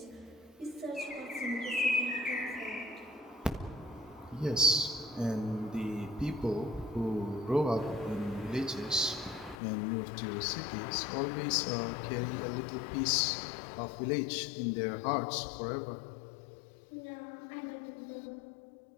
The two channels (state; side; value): drops out; right; at 9.6 s